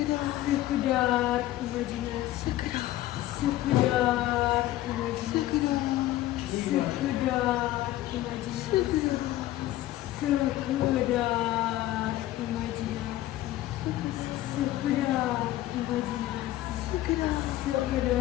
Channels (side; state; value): right; quieter; 15.1 dB